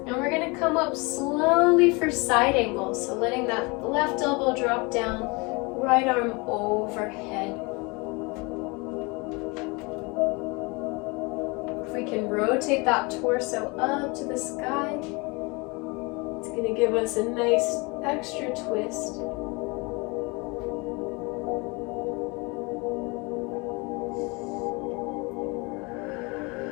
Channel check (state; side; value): quieter; right; 27.8 dB